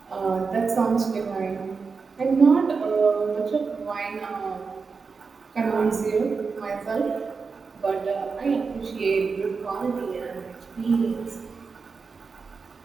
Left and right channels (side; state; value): left; quieter; 4.9 dB